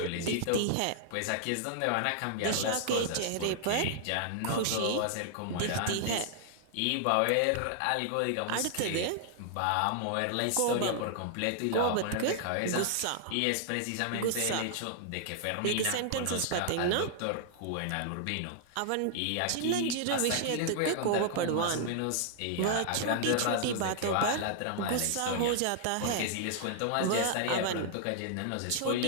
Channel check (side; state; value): both; different; correlation -0.01